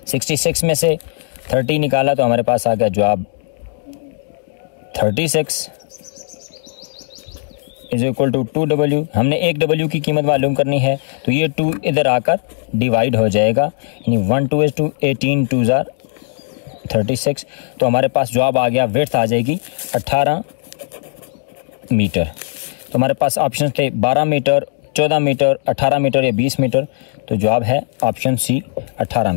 66 में से 30 निकाला तो हमारे पास आ गया जवाब 36 = 2W। हमने 1W की कीमत मालूम करनी है तो ये 2 इधर आकर डिवाइड हो जाएगा, यानी 1 2 is 2, 18 2 are 36। तो हमारे पास जवाब आ गया, विड्थ आ जाएगी 18 मीटर। तो हमारे पास ऑप्शन थे 12 मीटर, 14 मीटर, 18 मीटर या 20 मीटर। तो जवाब है ऑप्शन सी 18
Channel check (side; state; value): right; silent; digital silence